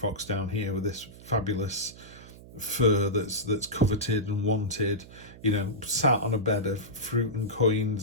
down here with this fabulous fur that's coveted and wanted, you know, sat on a bed of fruit and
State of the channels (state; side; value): noise; right; hum, 18 dB below the sound